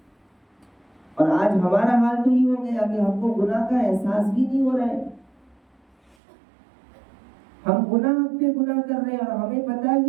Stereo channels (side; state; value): left; drops out; at 6.2 s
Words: اور آج ہمارا حال تو یہ ہو گیا کہ ہم کو گناہ کا احساس ہی نہیں ہو رہا ہے، ہم گناہ پہ گناہ کر رہے ہیں اور ہمیں پتہ